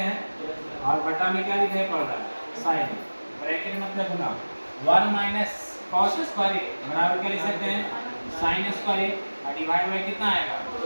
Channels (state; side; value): inverted; both; correlation -1.00